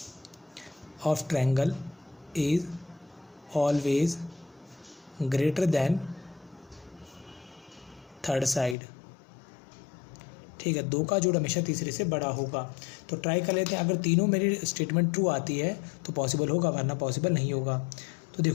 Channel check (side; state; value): right; drops out; at 8.8 s